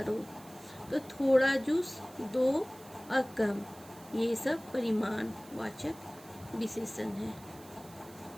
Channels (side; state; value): right; noise; hiss, 21 dB below the sound